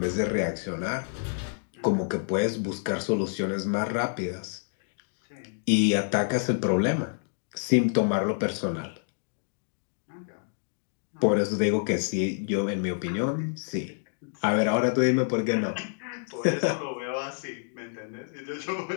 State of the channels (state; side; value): silent; right; digital silence